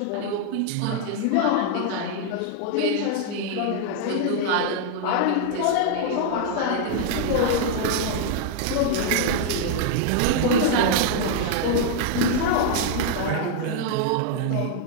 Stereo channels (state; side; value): different; both; correlation 0.00